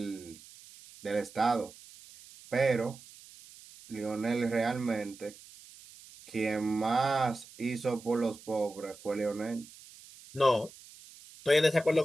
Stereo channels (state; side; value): noise; right; hiss, 20 dB below the sound